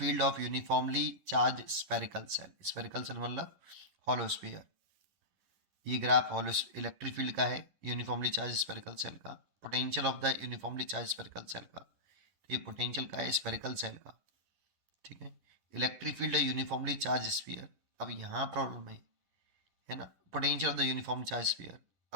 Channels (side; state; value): left; late; 10 ms